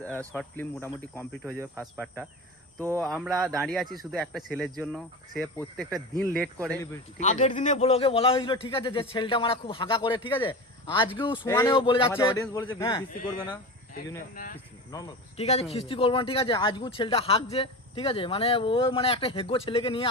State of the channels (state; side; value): normal; both; correlation 0.28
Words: শর্ট ফিল্ম মোটামুটি কমপ্লিট হয়ে যাবে ফার্স্ট পার্টটা। তো আমরা দাঁড়িয়ে আছি শুধু একটা ছেলের জন্য, সে প্রত্যেকটা দিন লেট করে। ঠিক আছে? আগের দিনে ব্লগে বলা হয়েছিল ঠিক আছে যে ছেলেটা মারা খুব হাগা করে, ঠিক আছে, আজকেও সমানেও বলে যাচ্ছে অডিয়েন্স বলেছে হ্যাঁ। বৃষ্টি করবে না, সেই জন্য নরমাল। ঠিক আছে খিস্তি করবো না, ঠিক আছে, আজকেও ছেলেটা হাঁকছে, ঠিক আছে, মানে ও মানে একটা হেগো ছেলেকে নিয়ে